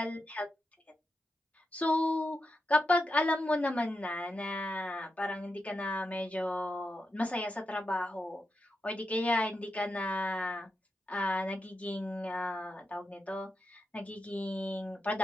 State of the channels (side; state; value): both; normal; correlation 0.87